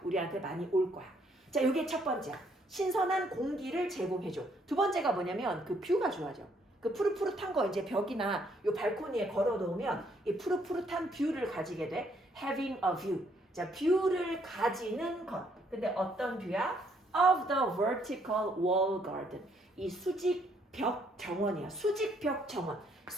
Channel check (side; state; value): both; normal; correlation 0.69